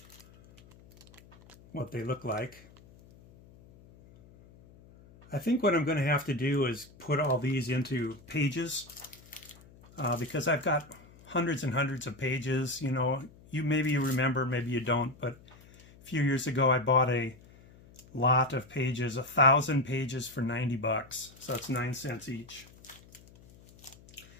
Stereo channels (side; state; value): left; noise; hum, 24 dB below the sound